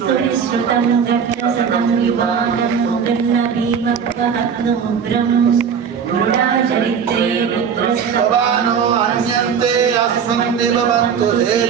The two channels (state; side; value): quieter; left; 7.0 dB